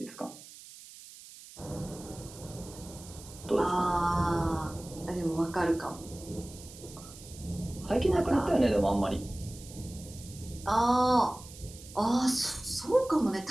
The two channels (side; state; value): right; noise; hiss, 17 dB below the sound